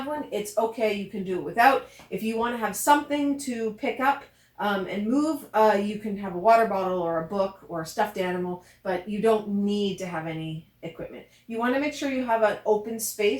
one, it's okay. You can do it without. If you want to have something to pick up and move, you can have a water bottle or a book or a stuffed animal, but you don't need to have any equipment. You want to make sure you have an open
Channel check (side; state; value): both; identical; correlation 1.00